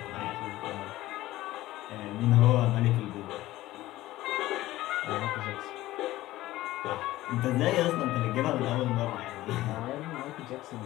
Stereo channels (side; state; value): right; quieter; 16.3 dB